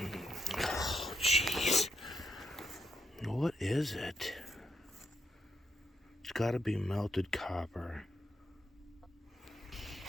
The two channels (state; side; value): normal; both; correlation 0.79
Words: Oh, jeez. What is it? It's got to be melted copper.